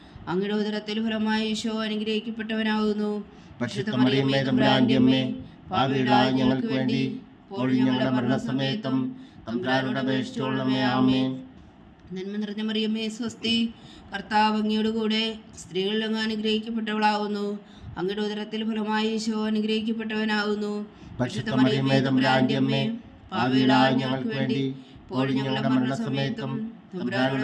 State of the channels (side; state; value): both; identical; correlation 1.00